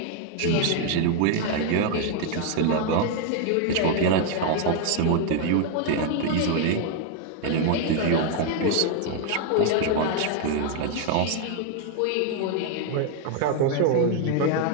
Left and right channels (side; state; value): both; different; correlation 0.00